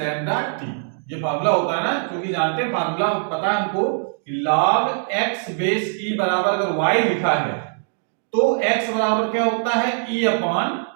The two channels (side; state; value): left; silent; digital silence